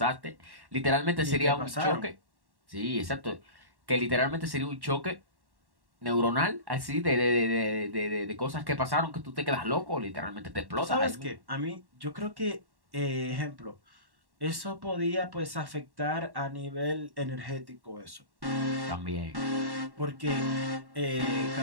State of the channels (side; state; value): left; late; 1.1 ms